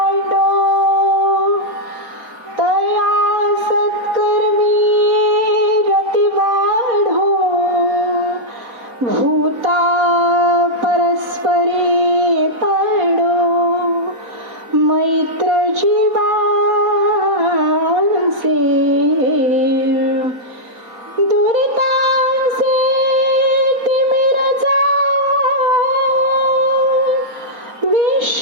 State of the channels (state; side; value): late; left; 4.0 ms